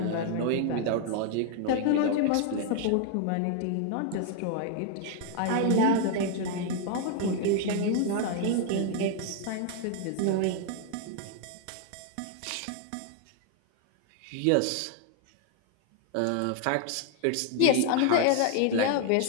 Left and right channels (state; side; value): different; both; correlation 0.00